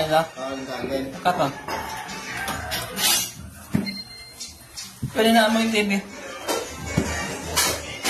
lang ito. Tandaan. Kat o. Pwede na mo yung TV.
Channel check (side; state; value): both; identical; correlation 1.00